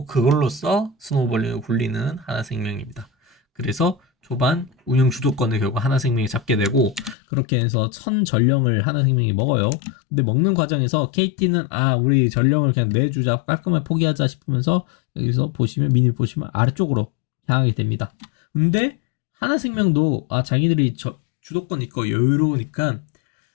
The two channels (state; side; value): drops out; right; at 7.2 s